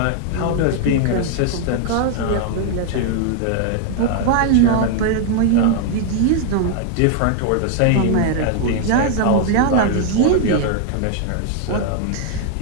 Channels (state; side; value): different; both; correlation 0.00